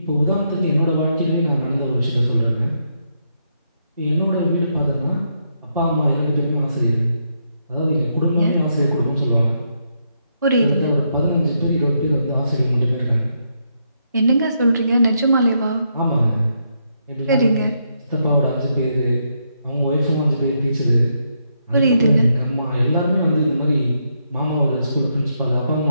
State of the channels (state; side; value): inverted; both; correlation -0.79